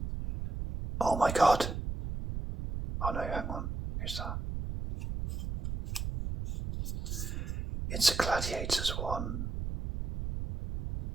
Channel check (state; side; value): noise; right; rumble, 4 dB below the sound